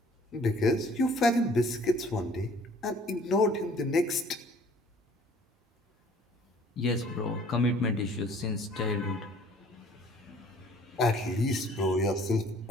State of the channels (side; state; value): both; normal; correlation 0.55